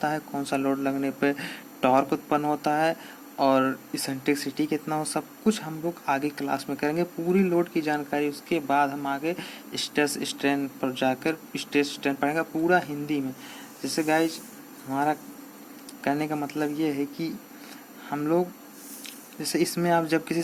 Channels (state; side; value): identical; both; correlation 1.00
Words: है, कौन सा लोड लगने पर टॉर्क उत्पन्न होता है, और इसेंट्रिसिटी कितना हो, सब कुछ हम लोग आगे क्लास में करेंगे, पूरी लोड की जानकारी। उसके बाद हम आगे स्ट्रेस स्ट्रेन पर जाकर स्ट्रेस स्ट्रेन पढ़ेंगे पूरा हिंदी में। जैसे गाइज हमारा कहने का मतलब ये है कि हम लोग, जैसे इसमें आप जब किसी